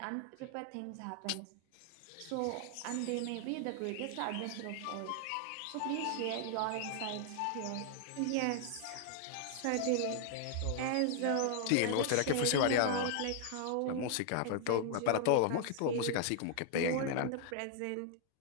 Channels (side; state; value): both; different; correlation 0.00